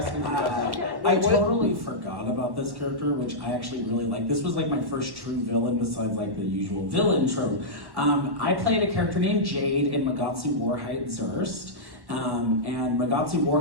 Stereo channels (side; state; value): left; late; 1.1 ms